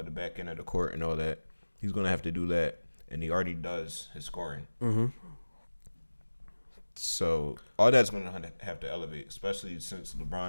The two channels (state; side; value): inverted; both; correlation -1.00